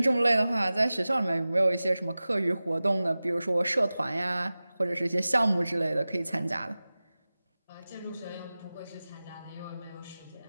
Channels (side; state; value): both; inverted; correlation -0.97